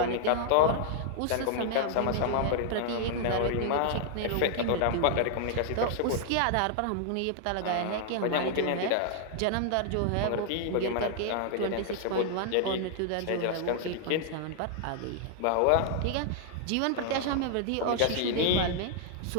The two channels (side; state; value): both; different; correlation 0.00